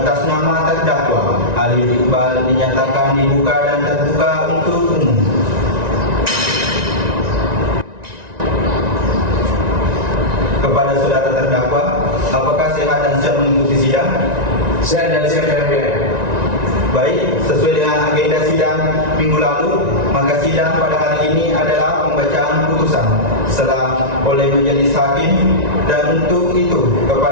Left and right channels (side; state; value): left; late; 1.9 ms